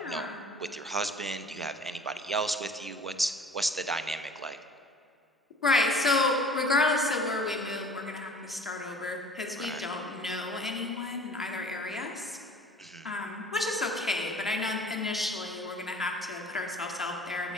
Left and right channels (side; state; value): both; normal; correlation 0.46